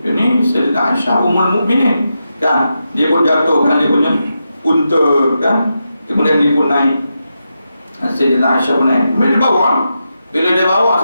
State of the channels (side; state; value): both; inverted; correlation -0.87